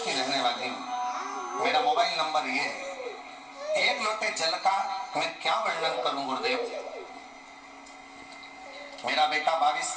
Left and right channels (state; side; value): identical; both; correlation 1.00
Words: रहने वाली हूँ। मेरा मोबाइल नंबर ये है। एक लोटे जल का मैं क्या वर्णन करूं गुरुदेव। मेरा बेटा 22